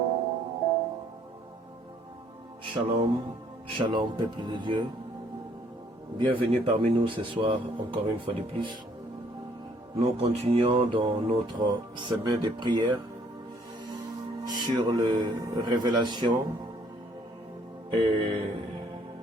Shalom, shalom peuple de Dieu. Bienvenue parmi nous ce soir, encore une fois de plus. Nous continuons dans notre semaine de prière sur les révélations et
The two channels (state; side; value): normal; both; correlation 0.64